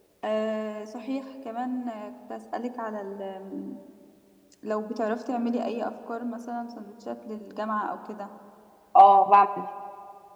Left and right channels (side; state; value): both; identical; correlation 1.00